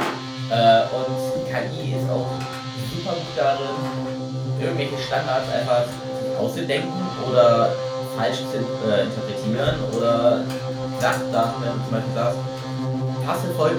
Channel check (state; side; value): identical; both; correlation 1.00